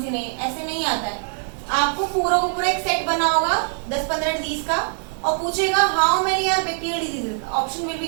सी नहीं, ऐसे नहीं आता है। आपको पूरा को पूरा एक सेट बना होगा 10-15 डिजीज का और पूछेगा how many are bacterial diseases, option will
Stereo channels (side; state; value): left; silent; 57 dB below the other